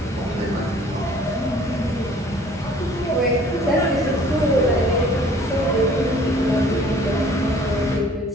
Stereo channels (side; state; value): both; normal; correlation 0.53